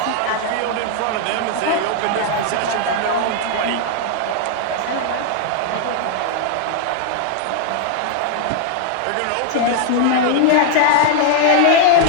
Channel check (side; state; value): both; different; correlation 0.00